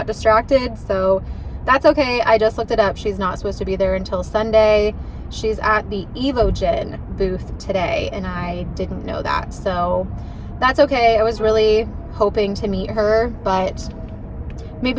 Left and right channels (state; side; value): identical; both; correlation 1.00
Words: distracted, so that's okay. I just looked it up. She's not supposed to be there until Sunday. She's at the Evogen booth today, and I didn't know that, so that's okay. I was really hoping to meet her, but